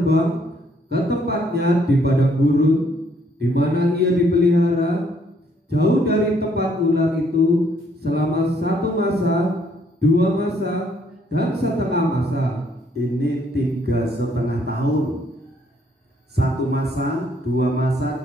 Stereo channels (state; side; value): normal; both; correlation 0.67